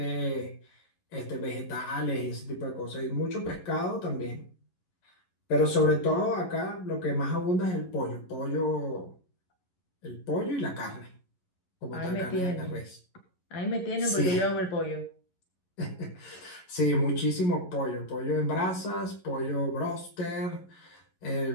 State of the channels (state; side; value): late; right; 11 ms